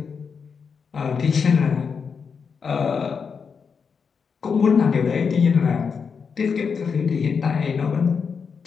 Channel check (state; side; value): quieter; right; 5.9 dB